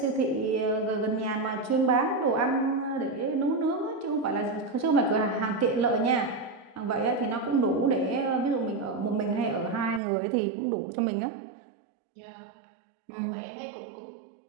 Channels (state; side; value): drops out; left; at 10.0 s